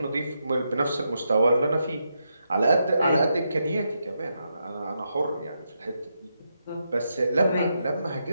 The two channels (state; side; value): inverted; both; correlation -0.83